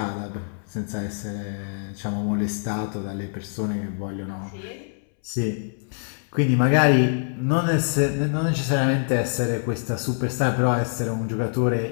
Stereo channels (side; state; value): right; silent; 62 dB below the other